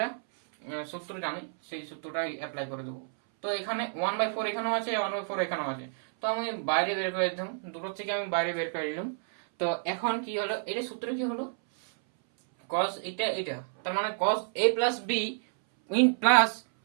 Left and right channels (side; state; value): left; silent; 58 dB below the other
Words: সূত্র জানি, সেই সূত্রটা অ্যাপ্লাই করে দেবো। তো এখানে 1/4 এখানেও আছে, 1/4 এখানেও আছে, তো আমি বাইরে বের করে দিলাম, দুটো থেকে আমি বাইরে বের করে দিলাম। তো এখন কি হলো, এটা সূত্র কি হলো cos এটা, তার মানে cos a plus b in plus